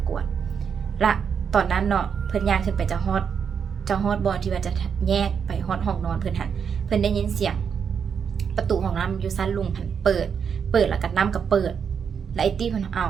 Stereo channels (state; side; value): quieter; left; 6.9 dB